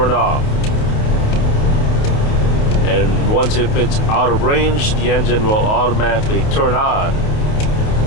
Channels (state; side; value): late; right; 28 ms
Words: off, and once if it's out of range, the engine will automatically turn on.